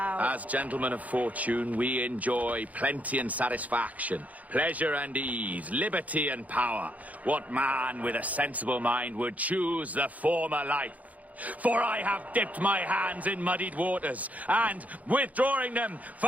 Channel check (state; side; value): late; left; 0.074 ms